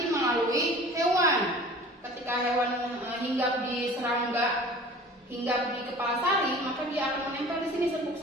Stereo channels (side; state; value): both; normal; correlation 0.43